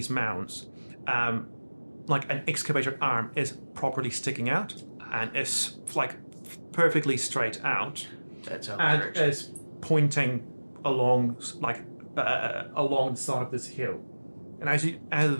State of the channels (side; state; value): both; inverted; correlation -1.00